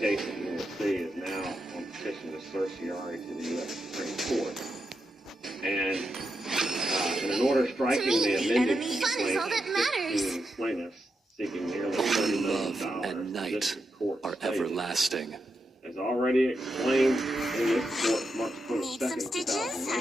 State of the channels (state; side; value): normal; both; correlation 0.86